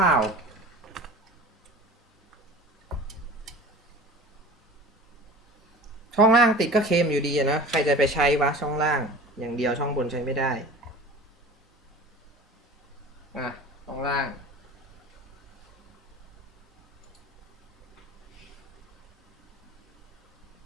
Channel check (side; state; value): both; normal; correlation 0.39